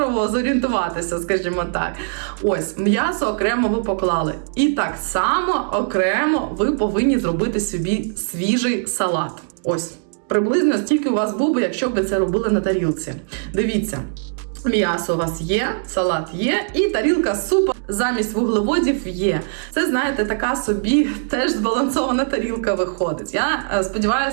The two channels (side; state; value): left; silent; digital silence